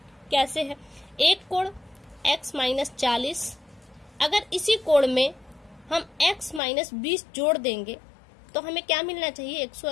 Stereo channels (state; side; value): drops out; right; at 6.6 s